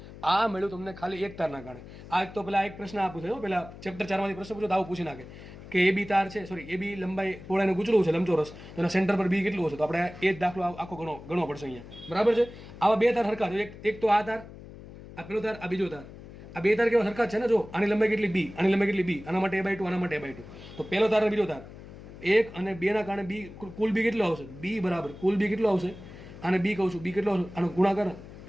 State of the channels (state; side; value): noise; left; hum, 16 dB below the sound